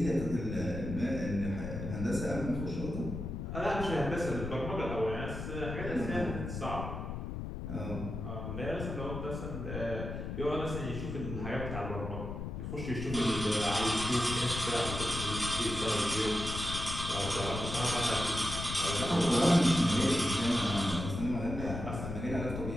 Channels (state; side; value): noise; left; rumble, 6 dB below the sound